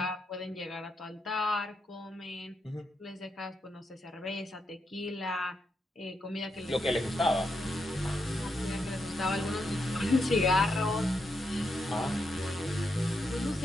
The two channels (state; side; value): normal; both; correlation 0.83